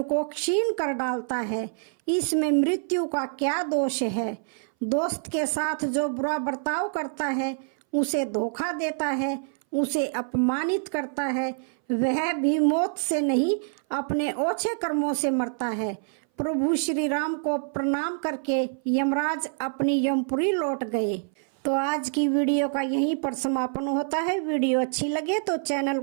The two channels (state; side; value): silent; left; 59 dB below the other